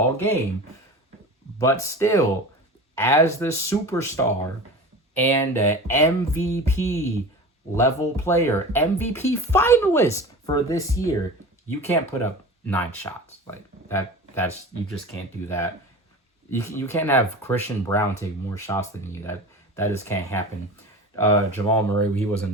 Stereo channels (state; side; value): normal; both; correlation 0.34